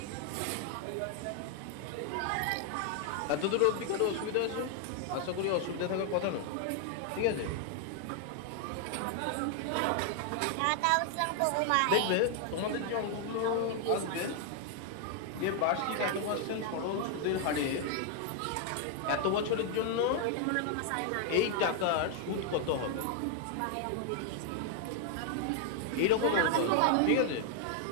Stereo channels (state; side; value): different; both; correlation 0.00